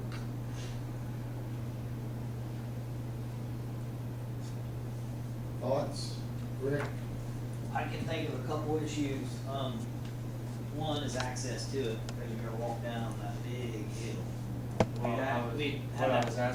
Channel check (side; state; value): both; identical; correlation 1.00